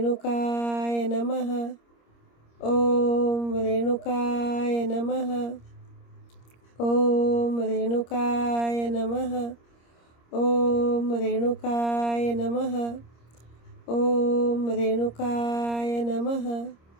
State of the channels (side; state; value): right; late; 26 ms